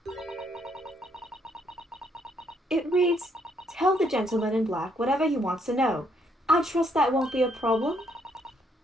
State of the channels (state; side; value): normal; both; correlation 0.71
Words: It reads, "Tell the gentleman in black whatever he wants to know. I trust that won't be a problem."